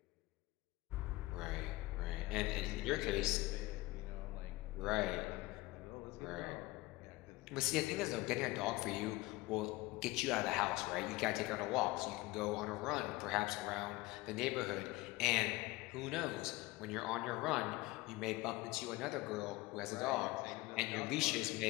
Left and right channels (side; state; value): right; quieter; 20.3 dB